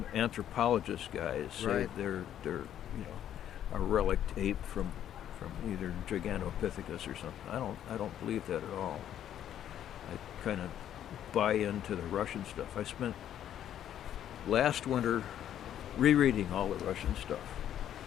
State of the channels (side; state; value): right; quieter; 10.6 dB